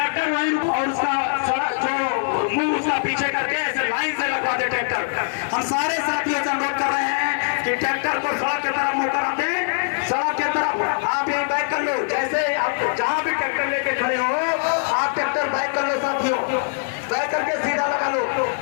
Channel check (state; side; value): silent; right; digital silence